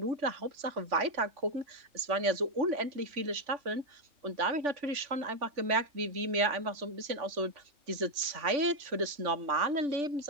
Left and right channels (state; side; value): late; left; 3.5 ms